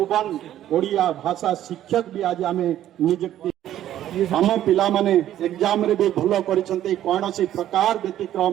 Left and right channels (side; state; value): left; quieter; 12.1 dB